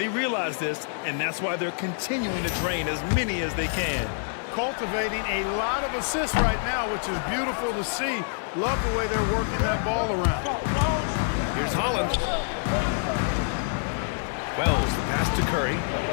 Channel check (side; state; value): right; silent; digital silence